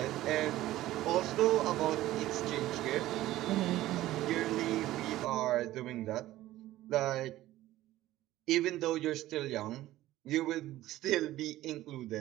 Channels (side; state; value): left; quieter; 15.4 dB